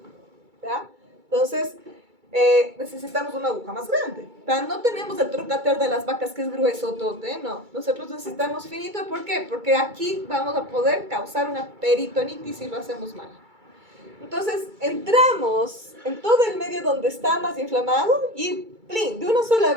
¿Ya? Entonces, necesitamos una aguja más grande. ¿Tá? No tenemos el trocater de las vacas que es grueso, tote, no. Nosotros necesitamos finito, ¿por qué? Porque aquí vamos a poder causar una peritonitis si lo hacemos mal. Entonces, entramos en todo el medio donde está más inflamado y plin, de una sola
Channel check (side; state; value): left; late; 2.3 ms